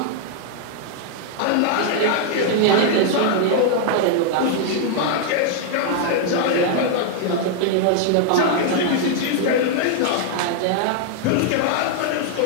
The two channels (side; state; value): both; different; correlation -0.01